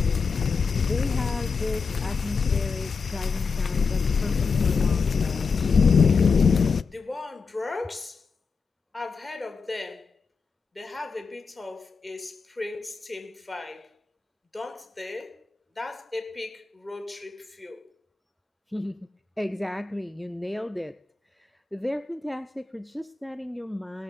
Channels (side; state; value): right; quieter; 4.9 dB